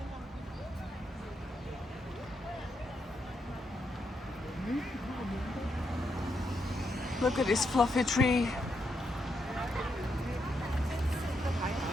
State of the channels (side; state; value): both; normal; correlation 0.81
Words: Look at this fluffy tree.